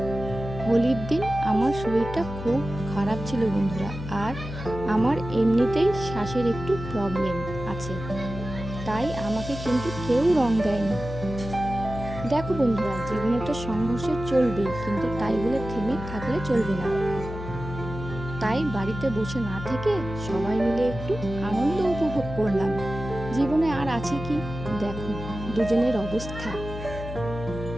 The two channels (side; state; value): left; noise; hum, 9 dB below the sound